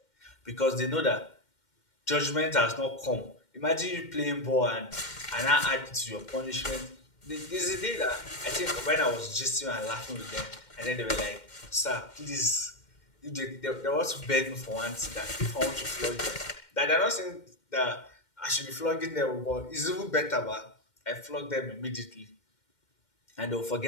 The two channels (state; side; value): late; right; 2.1 ms